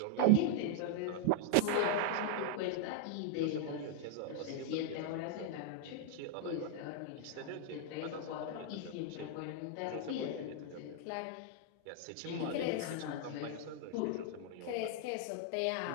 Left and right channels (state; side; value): different; both; correlation 0.00